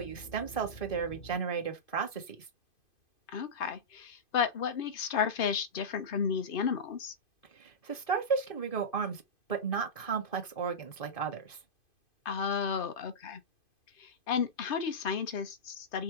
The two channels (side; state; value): right; late; 2.5 ms